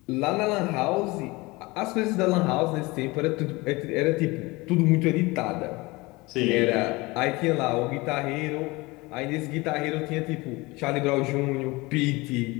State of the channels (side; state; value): right; quieter; 23.1 dB